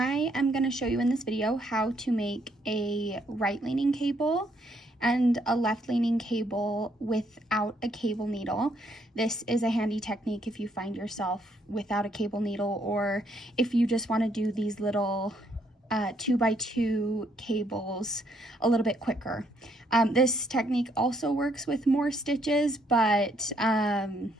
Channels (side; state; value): both; normal; correlation 0.71